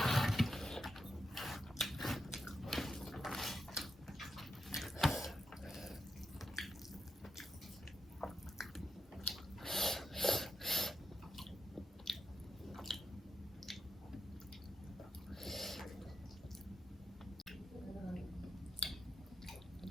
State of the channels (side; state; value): both; normal; correlation 0.86